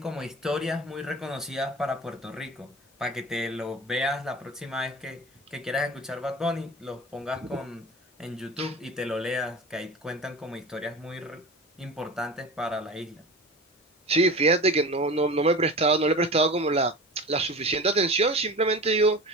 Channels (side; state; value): both; normal; correlation 0.34